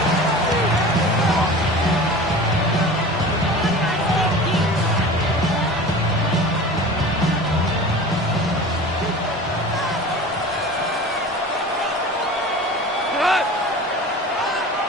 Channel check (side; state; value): both; normal; correlation 0.37